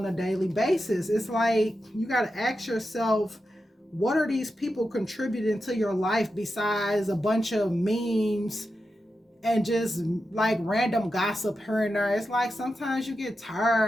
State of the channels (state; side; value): normal; both; correlation 0.89